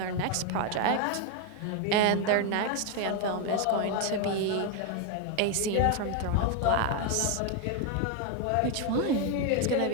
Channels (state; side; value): different; both; correlation 0.01